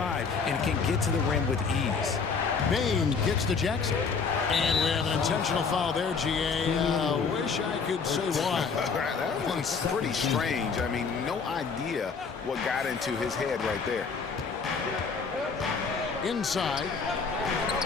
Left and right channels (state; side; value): quieter; right; 5.3 dB